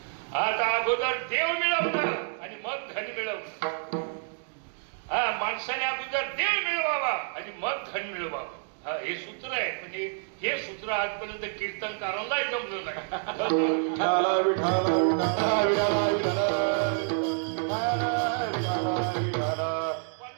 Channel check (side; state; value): left; silent; 59 dB below the other